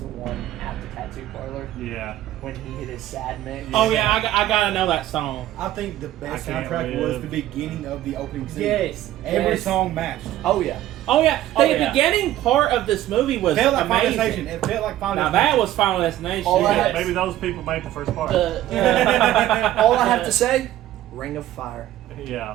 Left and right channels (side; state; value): left; quieter; 13.7 dB